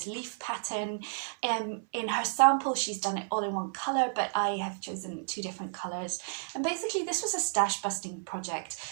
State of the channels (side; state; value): left; silent; 57 dB below the other